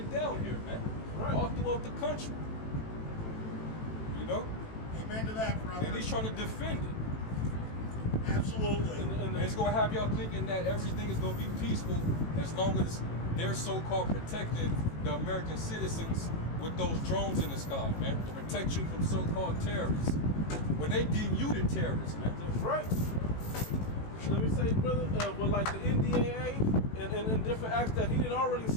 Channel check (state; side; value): late; right; 18 ms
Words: down here, man. Right. All throughout the country. You know? Amen to that, brother. And he's trying to defend it. Absolutely. And it's gonna have y'all thinking that everything is gonna be peaceful as long as they're so-called protecting the American citizens with those drones in the sky, man, to protect you from so-called terrorists. When they deem you the terrorist, man. That's right. Let me say, brother, with like the NDAA and different acts that he had already